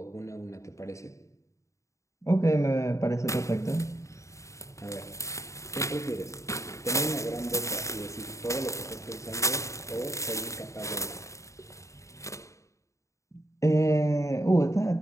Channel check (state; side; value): late; right; 0.15 ms